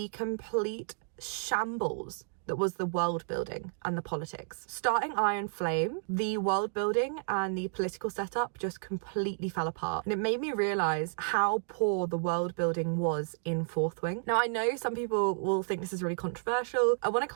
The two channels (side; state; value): left; silent; digital silence